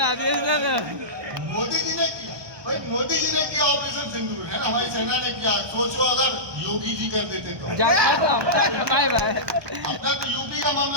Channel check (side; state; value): left; late; 1.2 ms